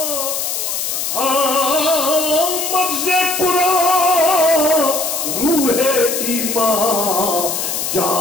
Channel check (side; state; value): left; noise; hiss, 2 dB below the sound